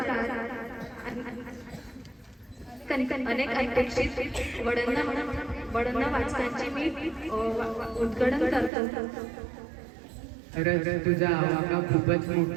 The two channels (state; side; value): drops out; left; at 8.7 s